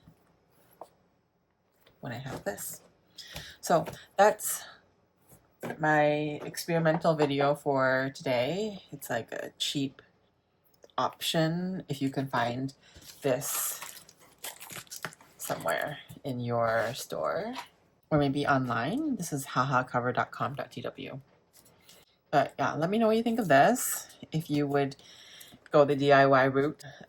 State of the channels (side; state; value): both; identical; correlation 1.00